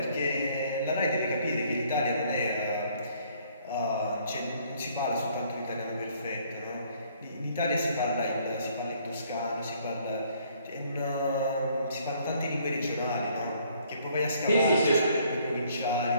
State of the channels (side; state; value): both; inverted; correlation -0.63